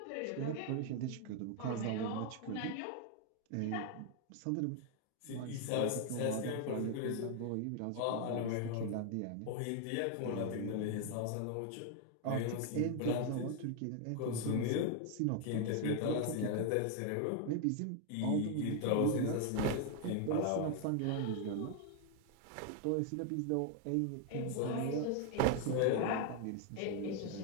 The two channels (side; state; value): both; different; correlation 0.00